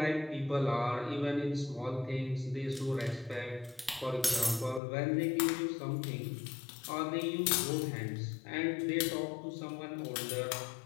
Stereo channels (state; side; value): drops out; right; at 4.8 s